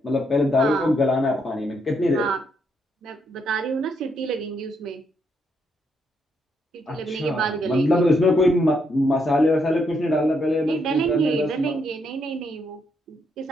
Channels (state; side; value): normal; both; correlation 0.76